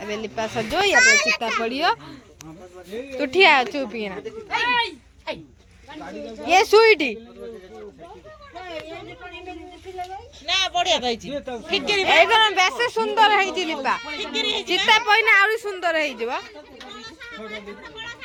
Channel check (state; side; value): identical; both; correlation 1.00